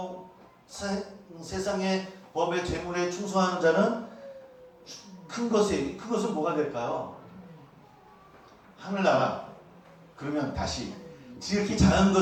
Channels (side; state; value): both; identical; correlation 1.00